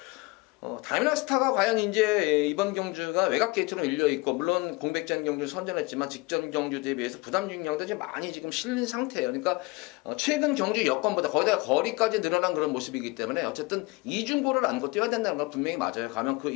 다이나믹 스타가 과연 이제 이번 경주가 외곽 게이트로 밀려 있고 물론 공백전 경주 선전했지만 직전 경주에 비해서 부담 중량도 이제 많이 지금 실린 상태예요. 그러니까 최근 경주 여건보다 거기다가 거리까지 늘어난 그런 모습이기 때문에 어쨌든 이중고를 안고 뛰어야 된다는 건 분명히 맞아요. 가면 그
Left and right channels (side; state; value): right; quieter; 24.3 dB